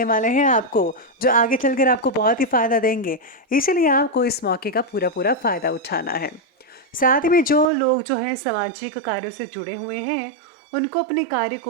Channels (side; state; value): left; drops out; at 7.7 s